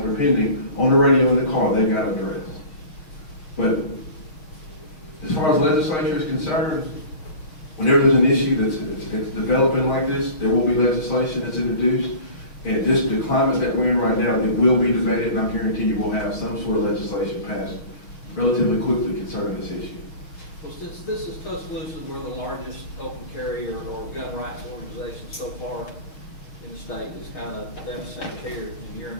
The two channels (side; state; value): right; late; 6.6 ms